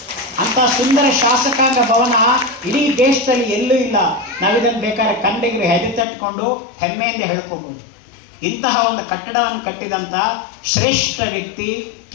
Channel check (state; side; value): drops out; right; at 6.1 s